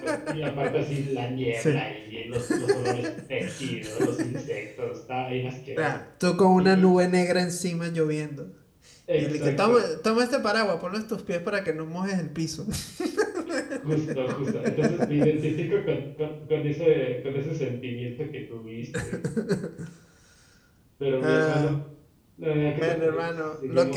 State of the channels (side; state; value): both; identical; correlation 1.00